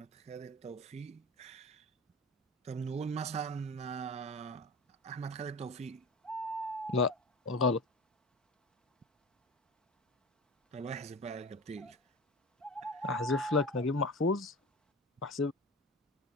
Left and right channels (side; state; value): both; normal; correlation 0.32